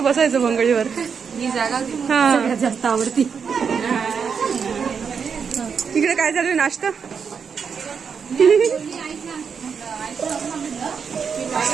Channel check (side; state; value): left; quieter; 6.4 dB